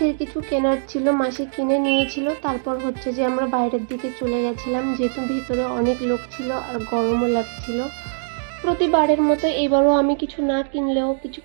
কিছু কেনার ছিল, মাসি কিনে নিয়েছিল। তারপর হচ্ছে যে আমরা বাইরের দিকে চলে গেছিলাম, যেহেতু ভিতরে অনেক লোক ছিল আর গরমও লাগছিল। প্রতিবারের মতো এবারও আমি কিছু না কিনলেও, কিছু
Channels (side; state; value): left; silent; digital silence